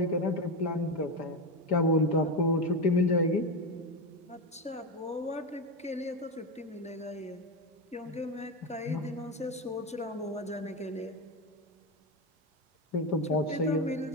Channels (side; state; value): both; normal; correlation 0.14